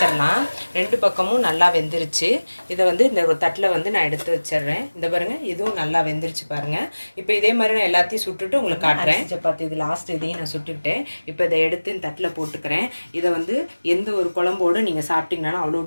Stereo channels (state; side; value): inverted; both; correlation -1.00